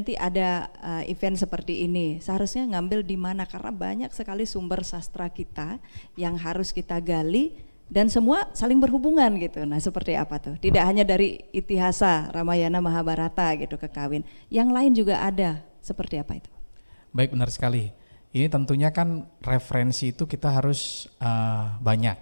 ada event seperti ini, seharusnya ngambil di mana, karena banyak sekali sumber sastra kita yang harus kita gali dan semua saling berhubungan gitu. Nah seperti apa tuh? Tidak hanya dari Itihasa, Ramayana, Mahabharata gitu ke kawin, yang lain juga ada. Seperti apa itu? Baik, benar sekali. Ini tentunya kan referensi itu kita harus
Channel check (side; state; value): both; inverted; correlation -1.00